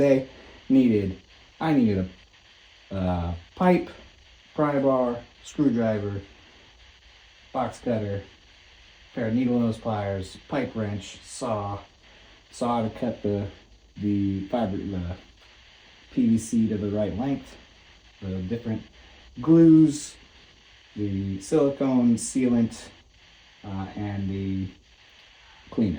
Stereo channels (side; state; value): both; identical; correlation 1.00